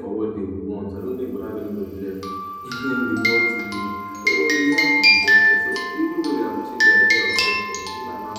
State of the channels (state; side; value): identical; both; correlation 1.00